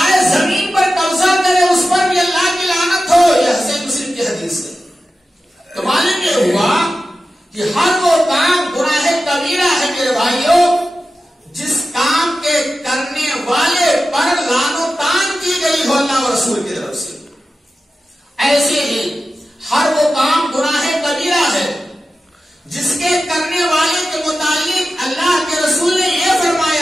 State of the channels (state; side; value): normal; both; correlation 0.93